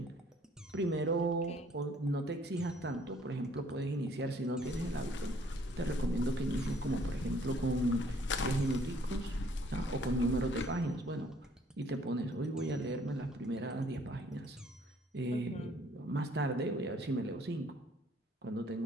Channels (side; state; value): both; normal; correlation 0.61